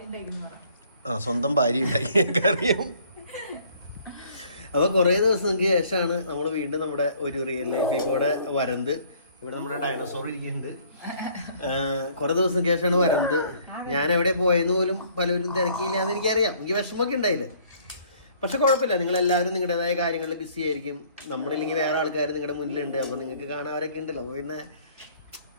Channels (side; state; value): both; inverted; correlation -0.59